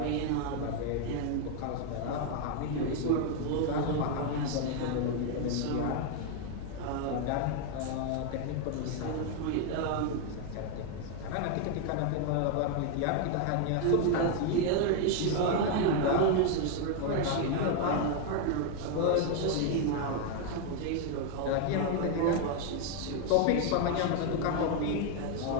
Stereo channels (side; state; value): both; different; correlation 0.00